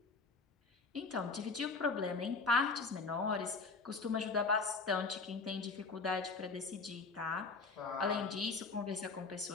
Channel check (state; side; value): quieter; right; 4.2 dB